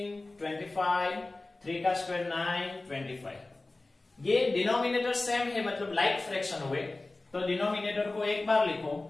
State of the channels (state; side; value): quieter; right; 3.1 dB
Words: 25, 3 का स्क्वायर 9, 25, ये डिनोमिनेटर सेम है, मतलब लाइक फ्रैक्शन हुए, तो डिनोमिनेटर को एक बार लिखो,